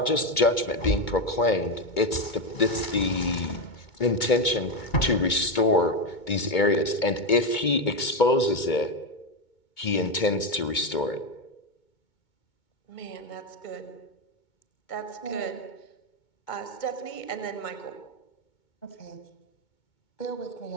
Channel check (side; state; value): right; late; 2.2 ms